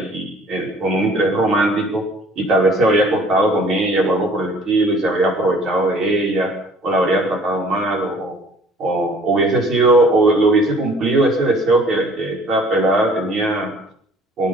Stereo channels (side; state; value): both; normal; correlation 0.54